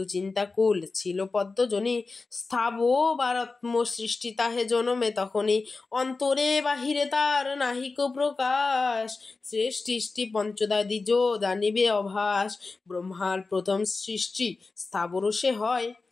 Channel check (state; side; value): quieter; right; 3.9 dB